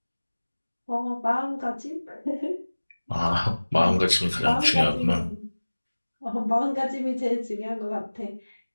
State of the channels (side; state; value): both; inverted; correlation -1.00